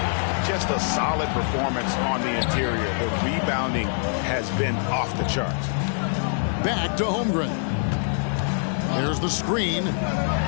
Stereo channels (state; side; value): silent; right; 62 dB below the other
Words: Just a solid performance on the interior. The rebounding has been off the charts. Back to Holmgren. There's the screen.